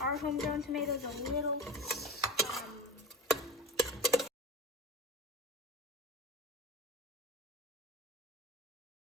homegrown tomatoes are a little.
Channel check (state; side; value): normal; both; correlation 0.31